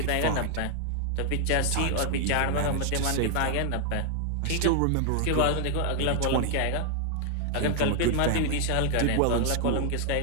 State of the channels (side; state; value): both; different; correlation 0.00